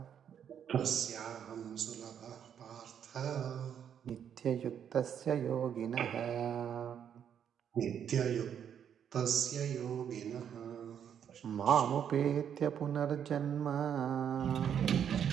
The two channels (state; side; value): quieter; left; 8.6 dB